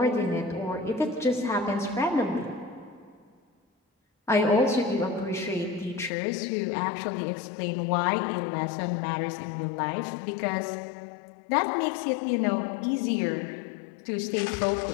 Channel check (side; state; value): right; drops out; at 6.1 s